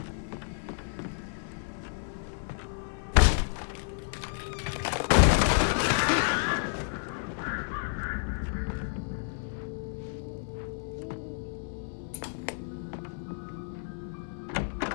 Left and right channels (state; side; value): silent; right; 57 dB below the other